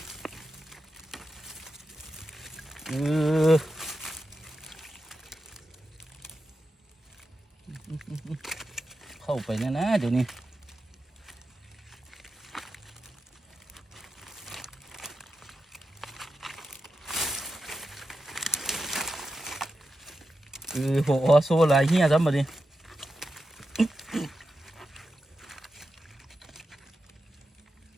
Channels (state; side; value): normal; both; correlation 0.89